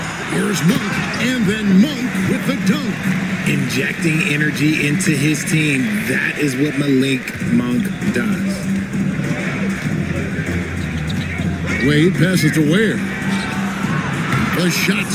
Here's Monk, and then Monk with the dunk. Injecting energy into his team. That is what Malik Monk does. Wade passes to Ware. The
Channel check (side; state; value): right; noise; rumble, 24 dB below the sound